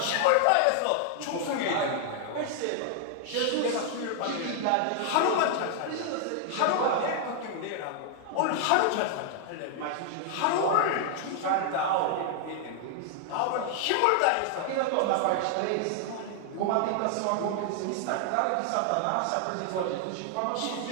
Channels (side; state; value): both; different; correlation 0.00